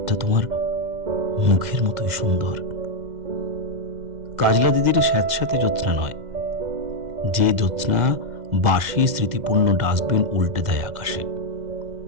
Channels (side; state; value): left; late; 2.0 ms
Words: তোমার মুখের মতোই সুন্দর। কাজলা দিদির স্যাঁতস্যাঁতে জ্যোৎস্না নয়, যে জ্যোৎস্না বাসি স্মৃতিপূর্ণ ডাস্টবিন উল্টে দেয় আকাশে।